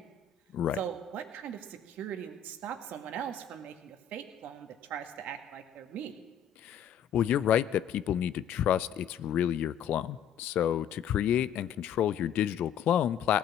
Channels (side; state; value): right; quieter; 8.0 dB